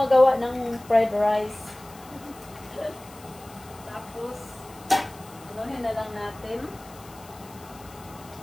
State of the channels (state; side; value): noise; left; hiss, 22 dB below the sound